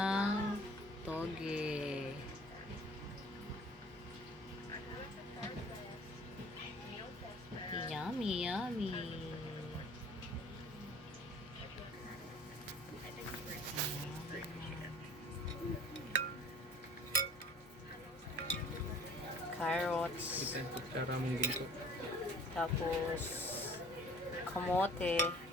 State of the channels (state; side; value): normal; both; correlation 0.49